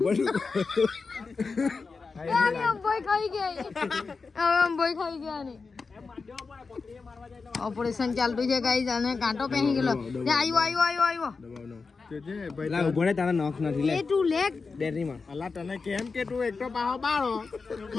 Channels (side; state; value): right; quieter; 4.5 dB